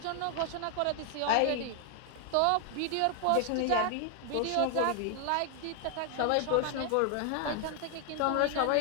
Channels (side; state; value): both; different; correlation 0.00